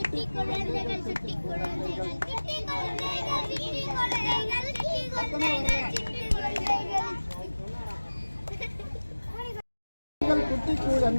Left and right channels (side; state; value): both; inverted; correlation -1.00